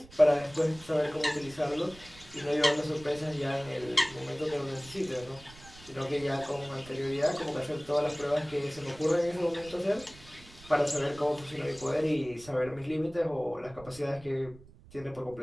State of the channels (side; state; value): right; noise; rumble, 21 dB below the sound